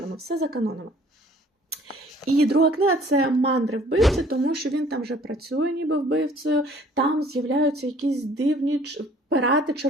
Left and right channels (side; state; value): both; normal; correlation 0.55